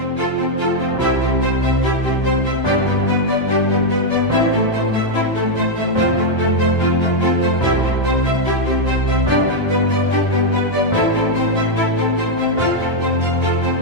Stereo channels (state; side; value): late; right; 1.3 ms